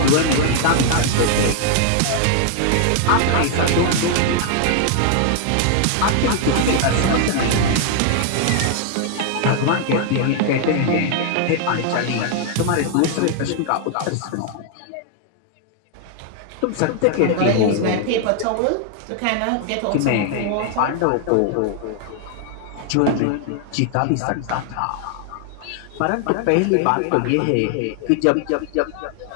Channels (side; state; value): both; different; correlation 0.00